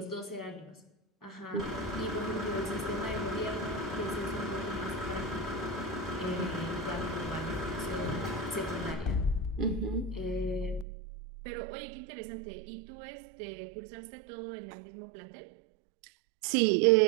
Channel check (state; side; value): drops out; left; at 10.9 s